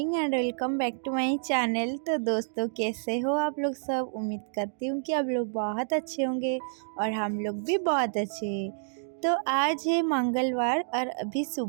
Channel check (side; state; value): left; silent; digital silence